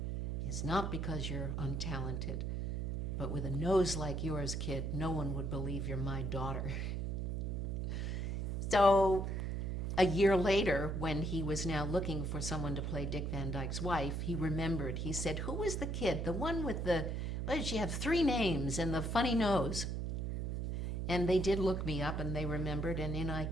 is not because you're untalented, but with a nose like yours, kid, no one would believe you're my daughter. So a year later, when he was now looking for someone to play Dick Van Dyke's wife, he remembered. He said, who was the kid, the one with the, what did she have, 3 names and the funny nose? And they did look me up, and they remembered, and in I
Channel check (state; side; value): noise; right; hum, 1 dB below the sound